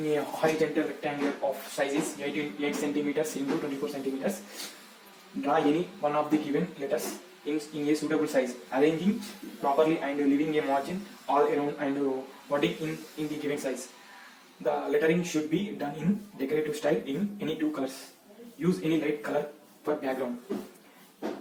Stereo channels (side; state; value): both; identical; correlation 1.00